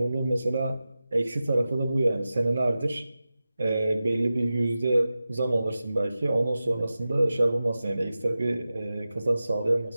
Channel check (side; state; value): both; inverted; correlation -0.94